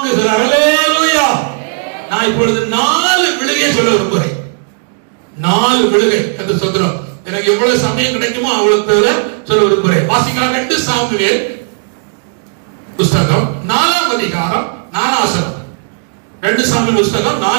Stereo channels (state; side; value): silent; left; 60 dB below the other